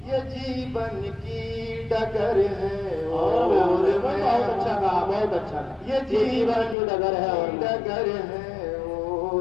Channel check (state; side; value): drops out; right; at 6.8 s